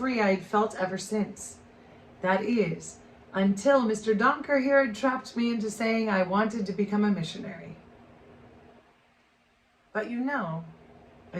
I had felt ever since. That is, until Mr. Donker here had trapped me into saying I wanted to become a missionary. "But you know,"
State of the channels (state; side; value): identical; both; correlation 1.00